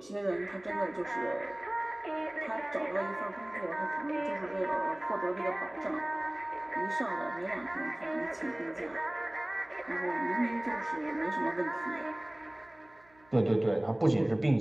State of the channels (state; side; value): noise; right; hum, 29 dB below the sound